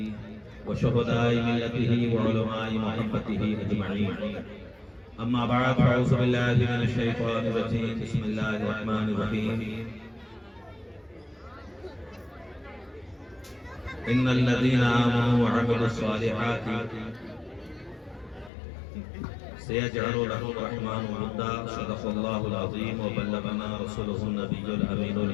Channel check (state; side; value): drops out; right; at 18.5 s